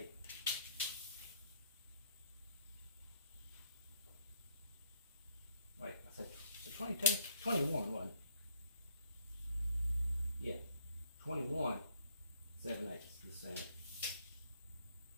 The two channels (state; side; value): inverted; both; correlation -0.66